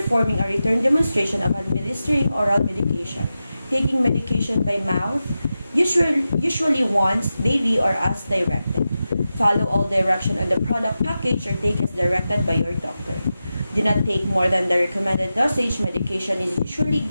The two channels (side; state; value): both; inverted; correlation -0.92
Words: a return demonstration of administering oral medication. Taking medication by mouth, usually once daily or as directed. Follow all direction on the product package or take as directed by your doctor. Do not take more than the recommended dosage. Medication is usually